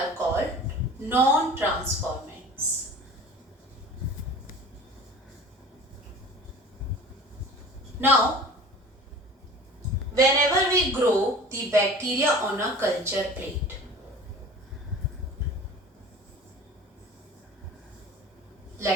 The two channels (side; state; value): both; normal; correlation 0.41